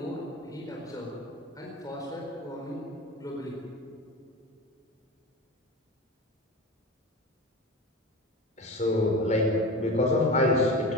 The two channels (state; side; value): normal; both; correlation 0.29